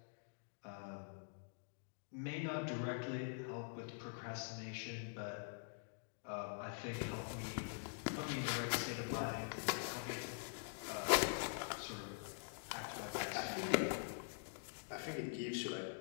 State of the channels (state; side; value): silent; right; digital silence